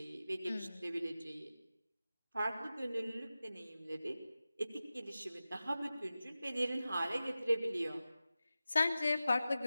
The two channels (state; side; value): inverted; both; correlation -0.95